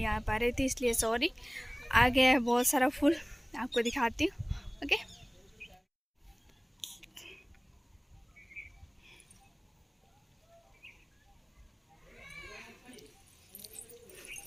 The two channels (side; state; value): both; identical; correlation 1.00